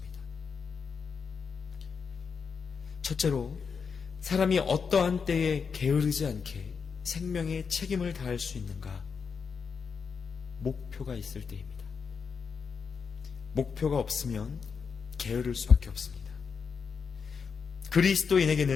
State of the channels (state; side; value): quieter; right; 5.8 dB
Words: 첫째로, 사람이 어떠한 때에 게으르지 않게 생명의 책임을 다할 수 있는가? 목표가 있을 때입니다. 목표가 없으면 게으를 수밖에 없습니다.